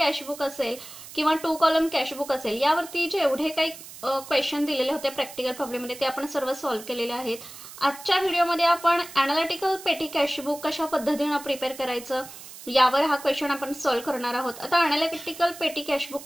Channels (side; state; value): right; noise; hiss, 15 dB below the sound